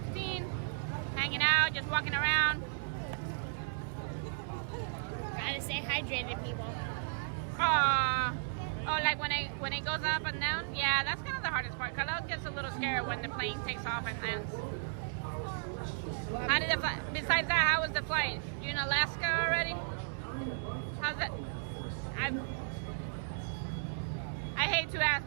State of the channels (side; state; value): left; silent; digital silence